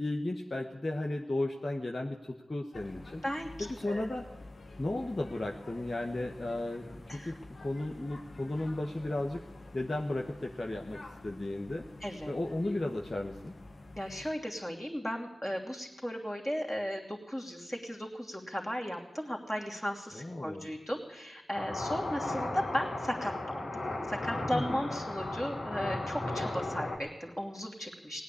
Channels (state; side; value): normal; both; correlation 0.97